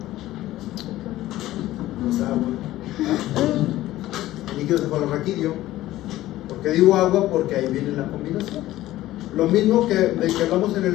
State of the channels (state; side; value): quieter; right; 15.4 dB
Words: Pues agua. El líquido cefalorraquídeo. ¿Por qué digo agua? Porque ahí viene la combinación. Lo mismo que hablamos en el